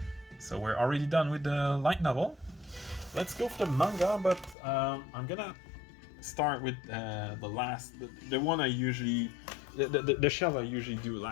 So we're already done with the light novel. Let's go for the manga, but I'm gonna start with the one I usually... the shelf I usually do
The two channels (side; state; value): right; drops out; at 4.5 s